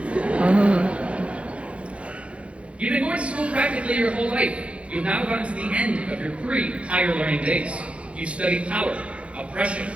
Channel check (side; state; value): left; late; 0.061 ms